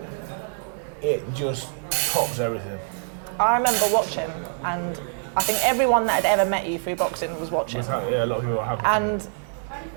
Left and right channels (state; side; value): silent; left; digital silence